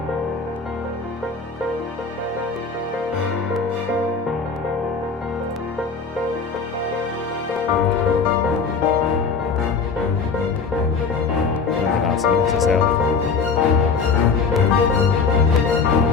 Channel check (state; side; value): quieter; right; 5.1 dB